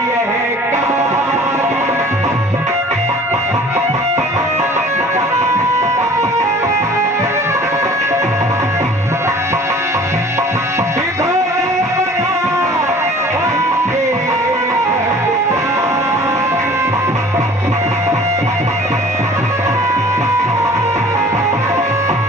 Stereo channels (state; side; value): normal; both; correlation 0.48